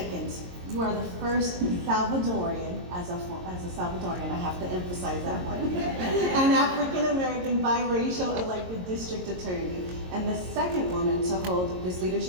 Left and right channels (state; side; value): late; left; 22 ms